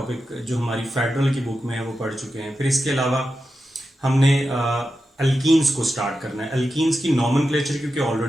जो हमारी फेडरल की बुक में है वो पढ़ चुके हैं। फिर इसके अलावा हमने एल्कीन्स को स्टार्ट करना है। एल्कीन्स की नॉमेनक्लेचर क्योंकि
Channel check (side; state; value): both; normal; correlation 0.90